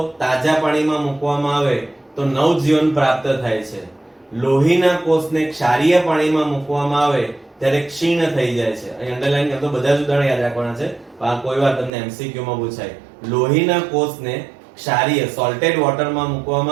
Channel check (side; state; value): left; drops out; at 11.9 s